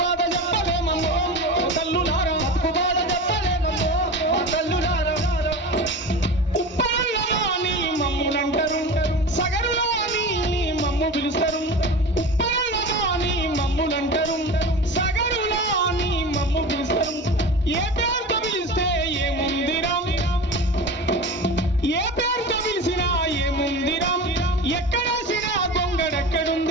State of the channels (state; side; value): normal; both; correlation 0.31